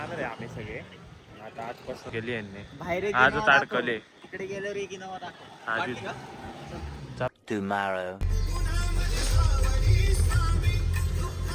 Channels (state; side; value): identical; both; correlation 1.00